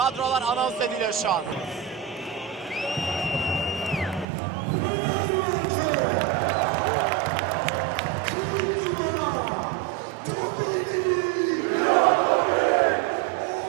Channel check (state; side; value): drops out; left; at 4.2 s